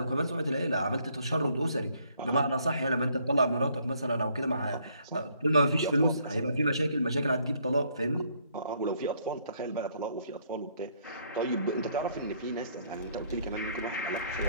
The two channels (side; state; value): both; inverted; correlation -0.67